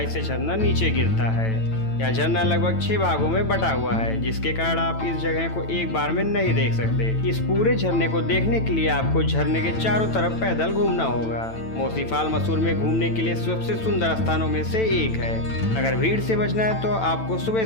से झरना नीचे गिरता है। यह झरना लगभग 6 भागों में बटा हुआ है, जिसके कारण आप इस जगह को एक बार में नहीं देख सकते। इस पूरे झरने को देखने के लिए आपको झरने के चारों तरफ पैदल घूमना होगा। मोसी फॉल मसूरी में घूमने के लिए सबसे सुंदर स्थानों में से एक है। अगर भीड़ से बचना है तो आपको सुबह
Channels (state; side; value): late; right; 9.0 ms